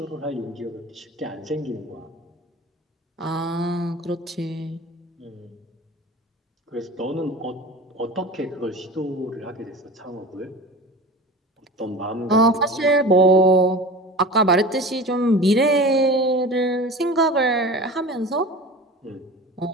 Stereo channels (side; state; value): both; normal; correlation 0.36